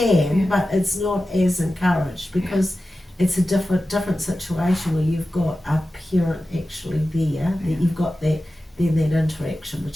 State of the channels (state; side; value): normal; both; correlation 0.94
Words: but it's not as encouraged, because it's a different situation where you've got a parent actually there, that you've got that interaction